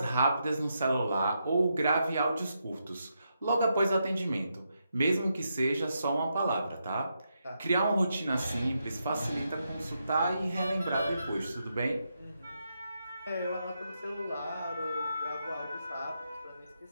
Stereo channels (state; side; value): inverted; both; correlation -0.83